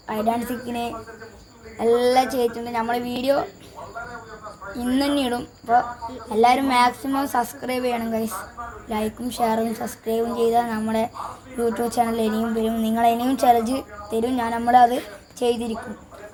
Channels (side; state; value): both; identical; correlation 1.00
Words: ഹൈഡ് ആൻഡ് സീക്കിന് എല്ലാം ചെയ്തിട്ടുണ്ട്. നമ്മൾ വീഡിയോ ഇന്ന് തന്നെ ഇടും. അപ്പോൾ എല്ലാവരും മാക്സിമം സബ്സ്ക്രൈബ് ചെയ്യണം ഗൈസ്. ലൈക്കും ഷെയറും സബ്സ്ക്രൈബും ചെയ്താൽ നമ്മുടെ യൂട്യൂബ് ചാനൽ ഇനിയും വരും. നിങ്ങൾ ഇനിയും ചലഞ്ച് തരും. നമ്മളത് ചെയ്തിരിക്കും.